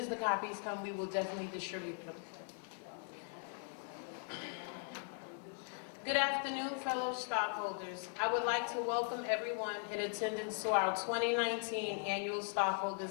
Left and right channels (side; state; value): right; silent; 51 dB below the other